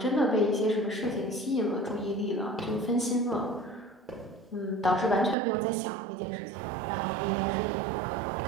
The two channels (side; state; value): left; drops out; at 5.4 s